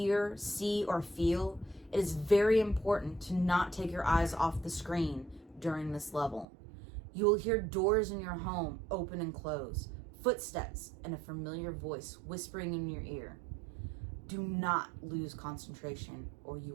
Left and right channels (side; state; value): left; drops out; at 6.5 s